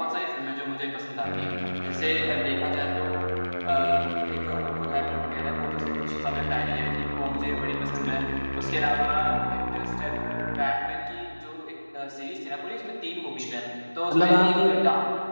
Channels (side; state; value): both; inverted; correlation -1.00